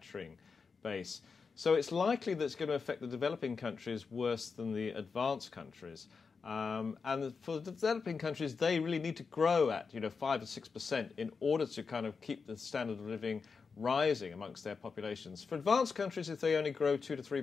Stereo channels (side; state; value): right; quieter; 5.1 dB